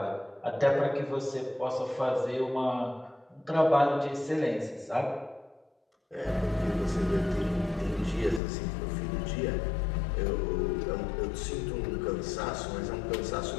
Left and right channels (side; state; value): right; drops out; at 8.4 s